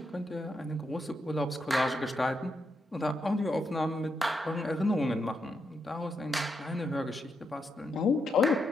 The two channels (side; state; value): both; normal; correlation 0.82